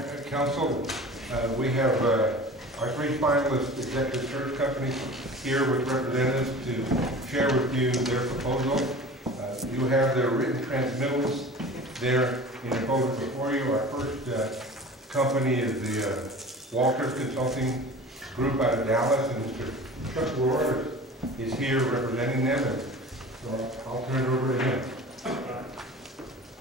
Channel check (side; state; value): both; normal; correlation 0.39